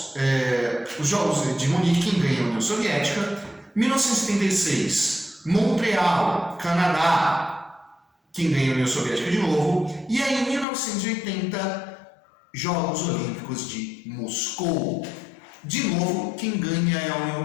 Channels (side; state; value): right; drops out; at 10.7 s